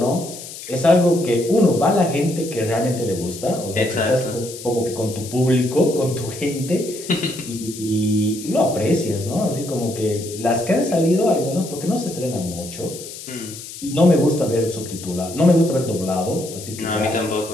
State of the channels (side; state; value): left; noise; hiss, 13 dB below the sound